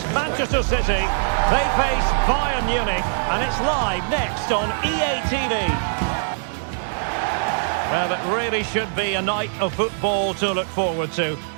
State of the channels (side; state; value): left; silent; digital silence